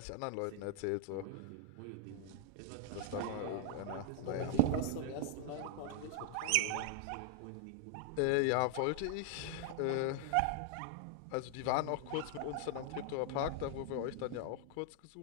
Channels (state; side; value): different; both; correlation 0.00